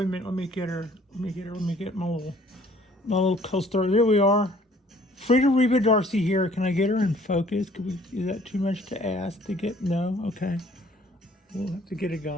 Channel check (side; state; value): both; normal; correlation 0.57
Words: me get her. Let me get my little co-star. There we are. Frida Reba Dorsey here. Can I get her in focus? Is that too much to ask to get? No? Okay. We'll have to get a